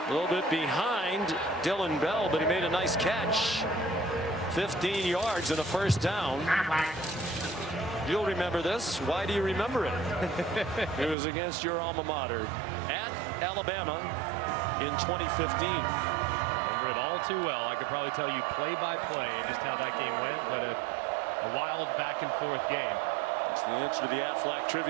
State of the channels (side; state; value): left; drops out; at 11.2 s